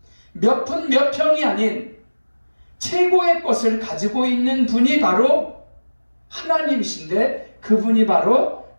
몇 푼 몇 평이 아닌 최고의 것을 가지고 있는 분이 바로 하나님이신데, 그분이 바로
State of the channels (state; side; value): inverted; both; correlation -1.00